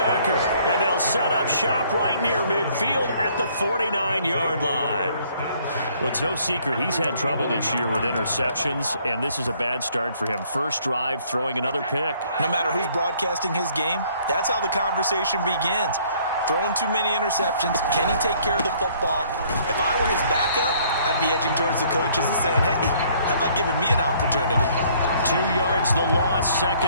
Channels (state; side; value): inverted; both; correlation -0.61